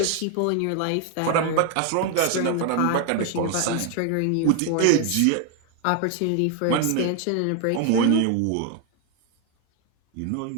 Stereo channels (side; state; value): both; different; correlation 0.01